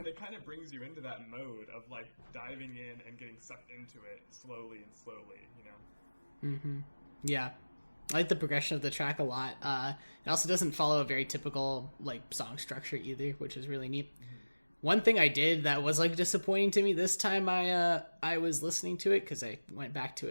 it kind of brings you into that mode of like diving in and getting sucked into it slowly, you know? Yeah. I like the progression of the track a lot. It also doesn't follow a very typical like song structure either, which is really neat. One thing I did that was like disappointing to me this time I was listening to it, because I went back to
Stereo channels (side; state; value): both; inverted; correlation -1.00